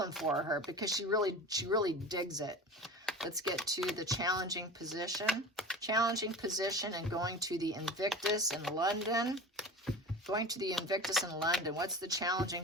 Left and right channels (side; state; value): both; normal; correlation 0.33